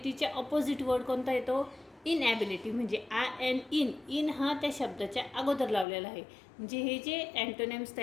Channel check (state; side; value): drops out; right; at 5.9 s